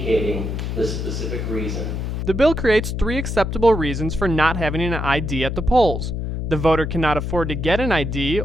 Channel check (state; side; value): noise; left; hum, 3 dB below the sound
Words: the specific reason. The bill creates 3 acceptable reasons for not having an ID at the polls. The voter cannot afford to get an ID